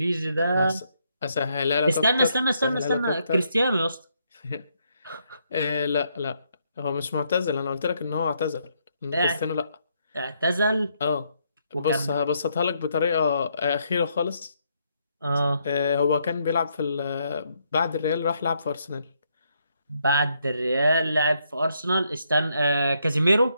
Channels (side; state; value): both; inverted; correlation -0.75